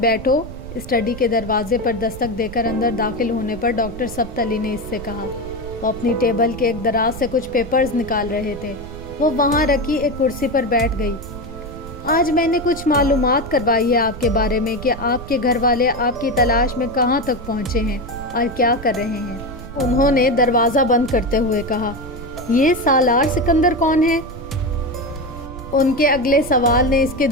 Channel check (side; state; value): right; noise; rumble, 12 dB below the sound